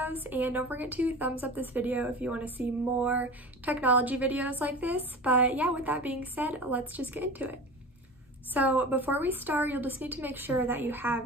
and don't forget to thumbs up this video if you want to see more technology videos like this. But yeah, with that being said, let's just get into it. So before we start, you'll just need to make sure that you have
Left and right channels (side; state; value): both; normal; correlation 0.33